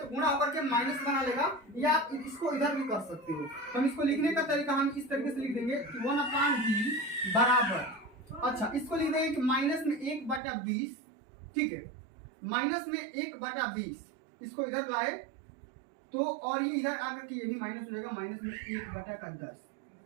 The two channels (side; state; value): left; drops out; at 10.4 s